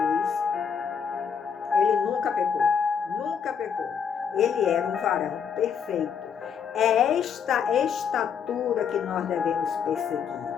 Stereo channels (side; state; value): right; quieter; 7.1 dB